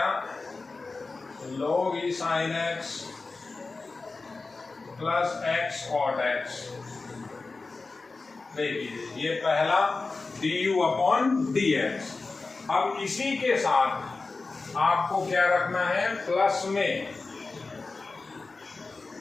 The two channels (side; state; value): right; quieter; 3.8 dB